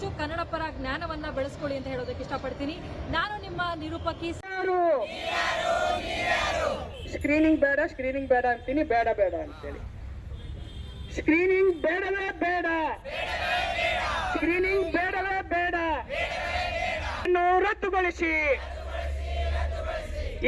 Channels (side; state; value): both; identical; correlation 1.00